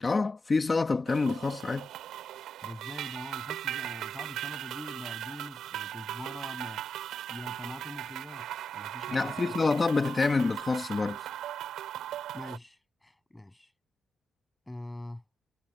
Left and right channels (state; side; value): normal; both; correlation 0.86